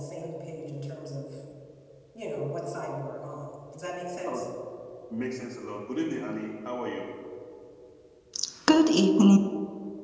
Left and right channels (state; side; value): identical; both; correlation 1.00